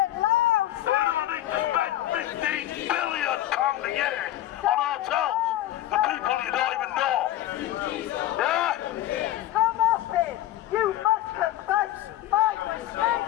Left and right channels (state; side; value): quieter; right; 13.9 dB